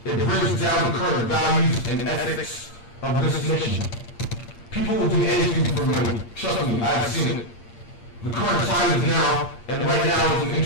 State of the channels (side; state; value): right; late; 8.6 ms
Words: it brings down the current values and ethics of this nation. People will do anything for money. Trust me, I've seen it. The current time is now, and right now is an